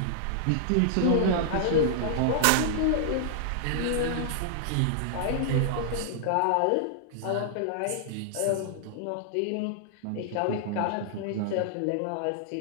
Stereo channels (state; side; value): different; both; correlation -0.01